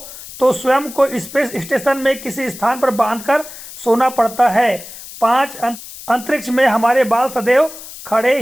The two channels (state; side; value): noise; left; hiss, 14 dB below the sound